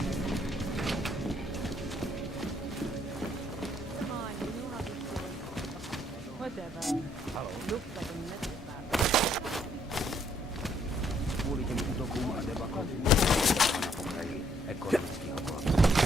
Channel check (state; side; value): normal; both; correlation 0.68